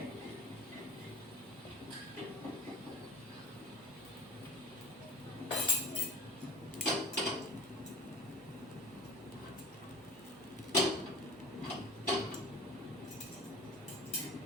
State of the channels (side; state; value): both; normal; correlation 0.38